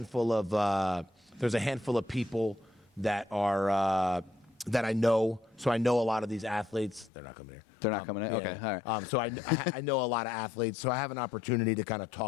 of people that are that I know. So I know a lot of these athletes. They're not coming here. So I know a lot of athletes, so I have an opportunity to kind of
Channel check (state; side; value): drops out; right; at 7.1 s